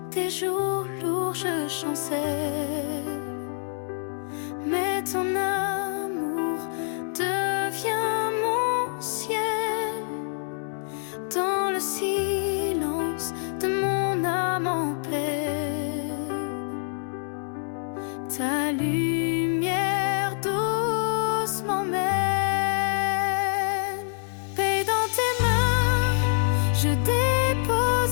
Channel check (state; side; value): silent; right; 61 dB below the other